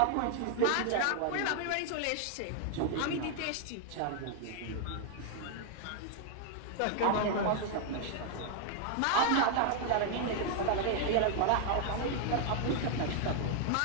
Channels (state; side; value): different; both; correlation 0.00